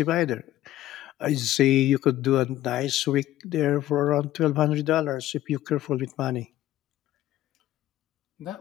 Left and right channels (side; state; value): right; quieter; 14.0 dB